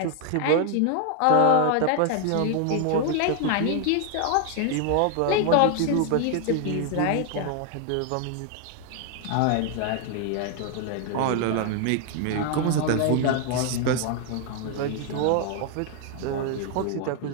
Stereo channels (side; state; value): both; different; correlation 0.00